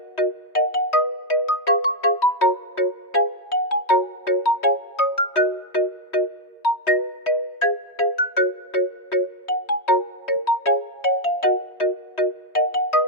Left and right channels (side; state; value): right; late; 3.2 ms